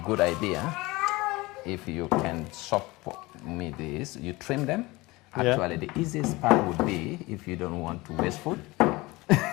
idea if you can chop me this. You trim them. Actually, the easiest part would be, if you don't want to waste food,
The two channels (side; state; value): right; quieter; 21.8 dB